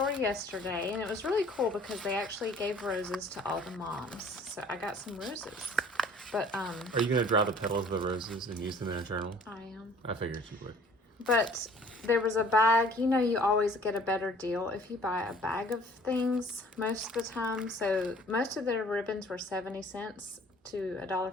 yesterday and it was really cool because they actually gave roses to all the moms. So I got some roses. But Are you going to draw the petals of the roses and use them in a journal? I am. I figured you would. But there was a bag. You know, you always get a better deal if you buy a bag of things most of the time. So most of their ribbons were 70 cents to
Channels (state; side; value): normal; both; correlation 0.53